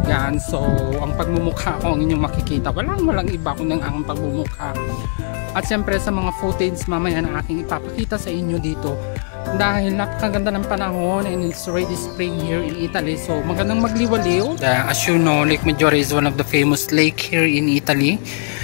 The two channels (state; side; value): silent; right; 66 dB below the other